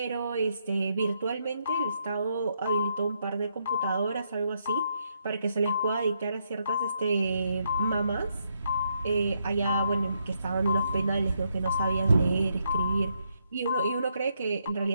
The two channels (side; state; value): both; inverted; correlation -0.78